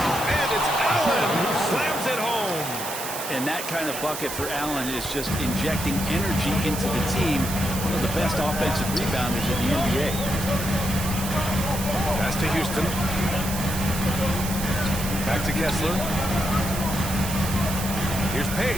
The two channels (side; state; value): right; noise; hiss, 7 dB below the sound